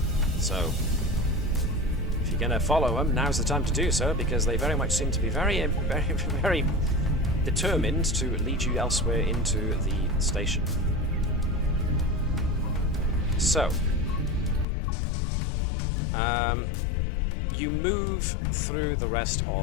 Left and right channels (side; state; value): right; drops out; at 14.7 s